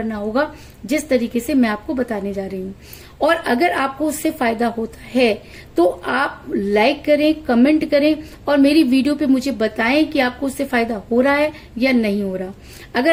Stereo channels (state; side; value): identical; both; correlation 1.00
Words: होगा जिस तरीके से मैं आपको बताने जा रही हूँ। और अगर आपको उससे फायदा होता है तो आप लाइक करें, कमेंट करें और मेरी वीडियो पे मुझे बताएं कि आपको उससे फायदा हो रहा है या नहीं हो रहा।